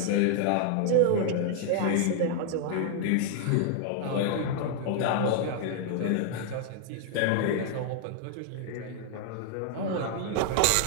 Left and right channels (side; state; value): both; different; correlation 0.00